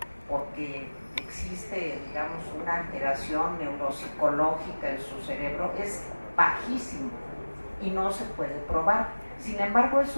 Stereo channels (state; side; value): inverted; both; correlation -1.00